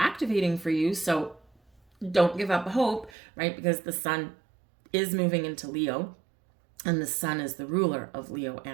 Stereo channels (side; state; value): left; drops out; at 3.1 s